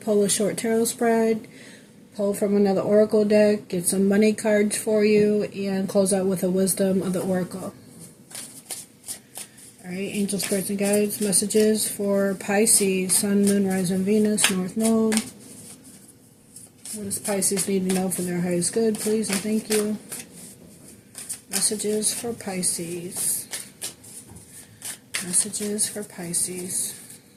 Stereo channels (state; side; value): identical; both; correlation 1.00